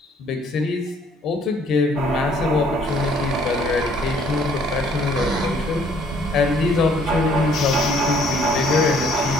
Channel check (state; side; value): normal; both; correlation 0.61